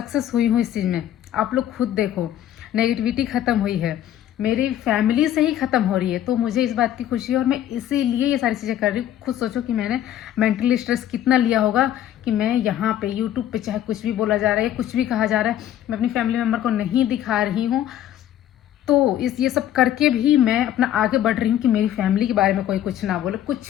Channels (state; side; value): quieter; right; 11.6 dB